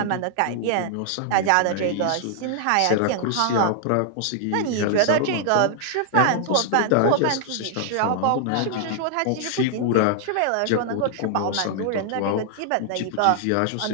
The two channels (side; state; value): both; different; correlation 0.00